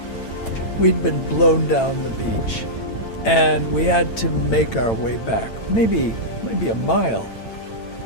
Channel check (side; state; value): right; late; 8.9 ms